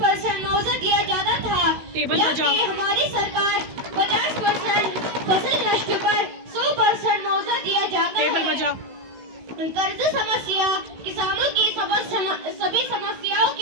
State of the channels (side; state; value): left; late; 16 ms